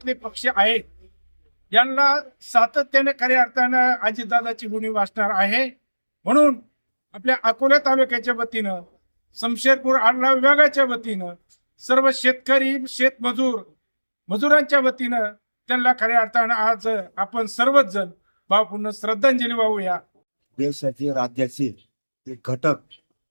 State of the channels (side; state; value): both; inverted; correlation -1.00